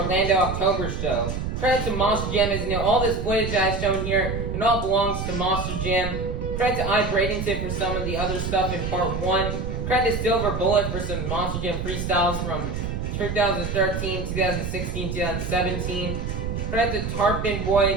October show. Credit to Monster Jam, as you know, all this footage I've shown here, it all belongs to Monster Jam. Credit to Bradenton for some of the other stuff in part 1. Credit to Silverbullet for some Monster Jam freestyles from 2013, 2016, 2017. Credit to Tarpon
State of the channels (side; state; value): right; noise; rumble, 4 dB below the sound